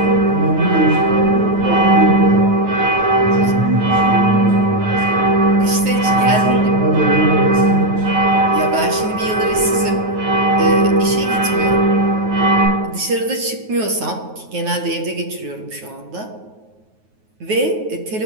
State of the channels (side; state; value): left; late; 9.3 ms